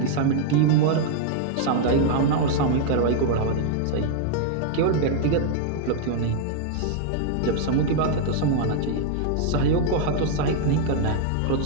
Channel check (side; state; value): both; different; correlation 0.00